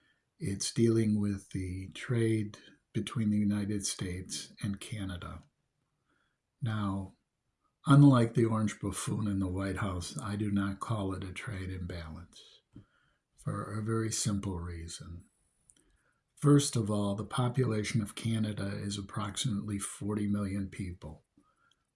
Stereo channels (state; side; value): identical; both; correlation 1.00